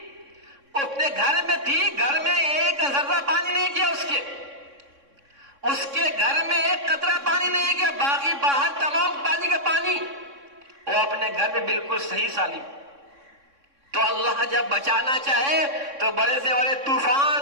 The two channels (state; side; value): late; left; 3.6 ms